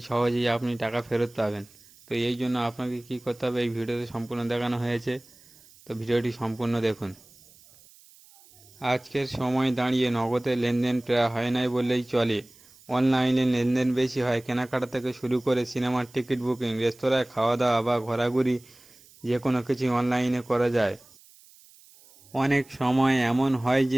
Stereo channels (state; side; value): noise; right; hiss, 26 dB below the sound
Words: সহজেই আপনি টাকা ফেরত পাবেন। তো এই জন্য আপনাকে কী করতে হবে এই ভিডিওতে সম্পূর্ণ দেখানো হয়েছে। তো ভিডিওটি সম্পূর্ণ দেখুন। আজকের সময় দাঁড়িয়ে নগদে লেনদেন প্রায় হয় নাই বললেই চলে। অনলাইনে লেনদেন বেশি হয়। কেনাকাটা থেকে শুরু করে সিনেমার টিকিট বুকিং, রেস্তোরাঁয় খাওয়া দাওয়া বা ঘোরাঘুরি যে কোনো কিছুই অনলাইনে করা যায়। অনেক সময় এমন হয়